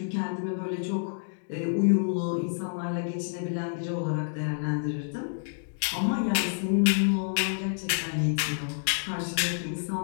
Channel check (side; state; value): right; silent; digital silence